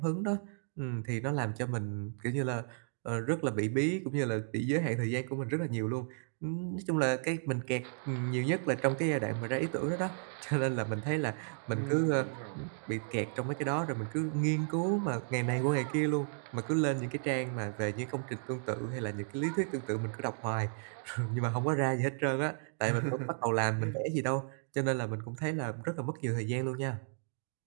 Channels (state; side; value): silent; left; digital silence